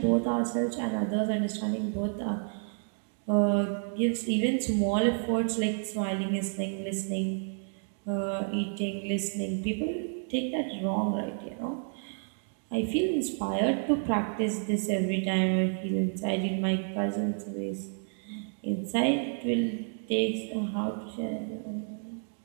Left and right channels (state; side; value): silent; left; 58 dB below the other